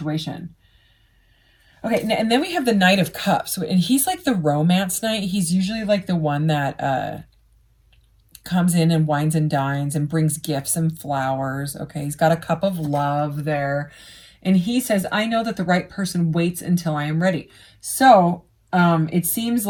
Okay, and then we have the Knight of Cups, and he's like the romance knight. He's usually like the one that comes in and wines and dines and brings gifts and flowers. Okay, he's got a cup of love there. And he says, I know that the right person waits until I am ready. So it seems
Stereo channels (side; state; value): both; identical; correlation 1.00